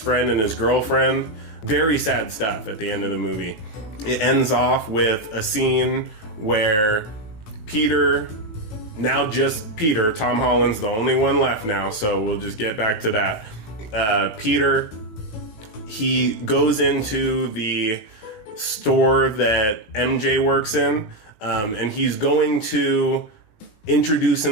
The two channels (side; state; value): right; late; 19 ms